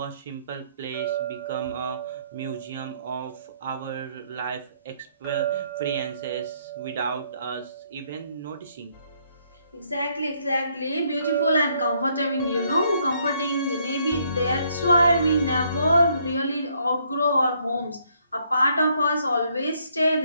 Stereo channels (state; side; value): inverted; both; correlation -0.69